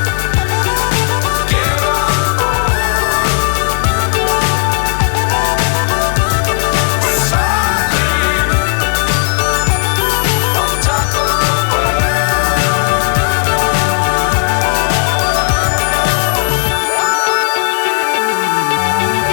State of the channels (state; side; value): silent; right; digital silence